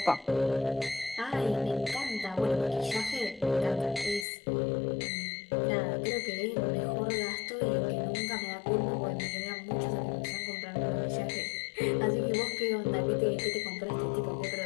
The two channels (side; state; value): right; drops out; at 4.2 s